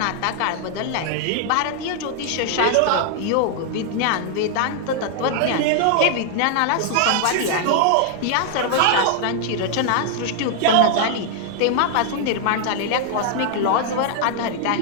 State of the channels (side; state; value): both; different; correlation 0.00